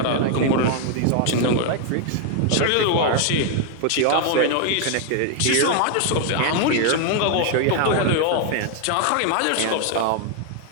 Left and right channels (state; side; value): different; both; correlation 0.00